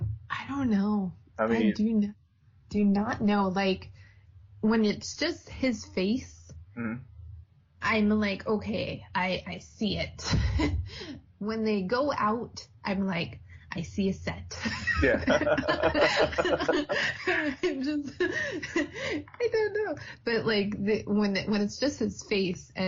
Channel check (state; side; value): identical; both; correlation 1.00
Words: I don't know. I do not know. Like, when it's just his face, I'm like, okay, I see it. When they go out, I'm like, I see a set. Yeah. I don't know. But like when it's just his face